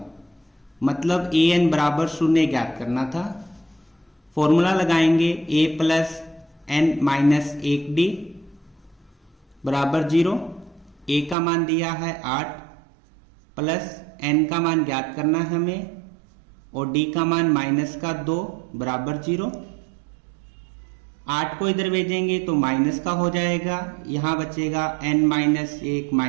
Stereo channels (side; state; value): left; drops out; at 11.4 s